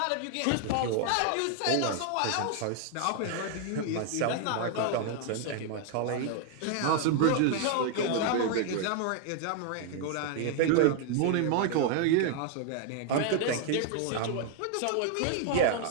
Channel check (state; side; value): different; both; correlation 0.00